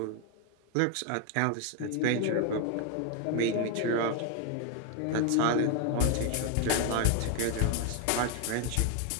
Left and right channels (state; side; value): different; both; correlation 0.01